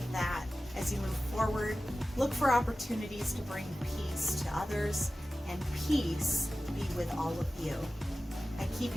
that as you move forward. Look for opportunities to bring peace to others, and peace be with all of you. I keep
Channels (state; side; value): normal; both; correlation 0.95